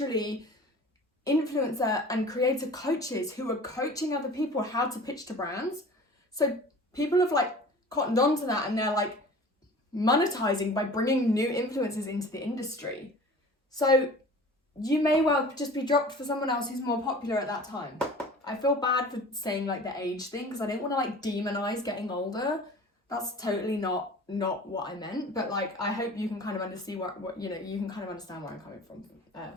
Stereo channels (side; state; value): both; normal; correlation 0.42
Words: influencer and creator coaches who are coaching other people how to pitch to brands. So people have like cottoned on to that and they're like monetizing by bringing new influencers into the industry. So you may well just be dropped for someone else who's more popular at that time. I feel bad for saying like the age thing because I didn't want to like demonize getting older. That's totally not what I meant. But like, I hope you can kind of understand what you know, you can kind of understand where I'm coming